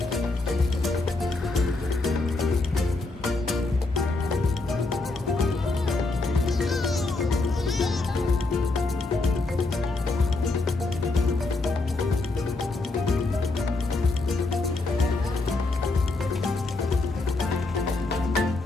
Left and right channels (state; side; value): quieter; right; 3.3 dB